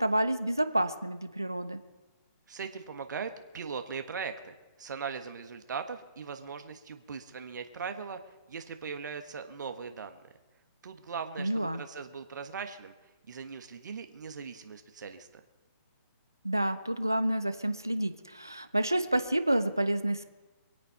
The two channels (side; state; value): both; inverted; correlation -0.87